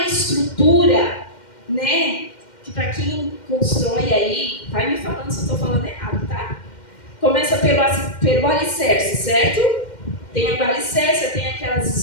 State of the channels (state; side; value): late; right; 2.1 ms